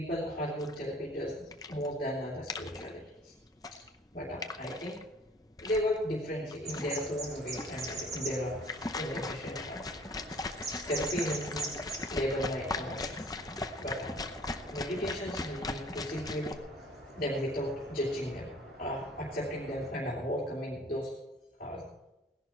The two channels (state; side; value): normal; both; correlation 0.52